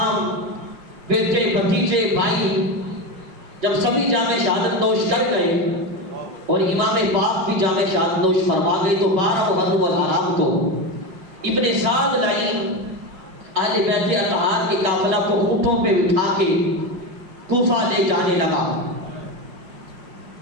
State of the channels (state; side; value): late; left; 5.7 ms